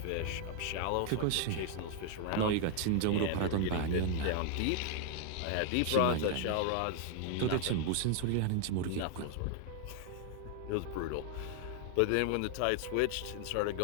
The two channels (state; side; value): different; both; correlation 0.00